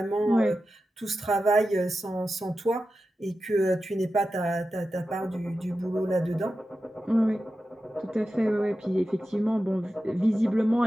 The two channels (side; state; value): both; normal; correlation 0.92